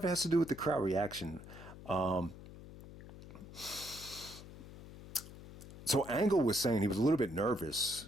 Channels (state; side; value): noise; left; hum, 15 dB below the sound